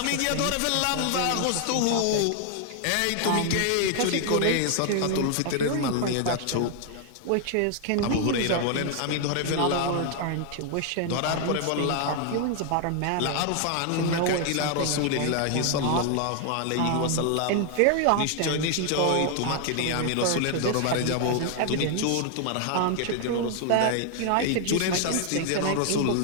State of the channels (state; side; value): different; both; correlation 0.00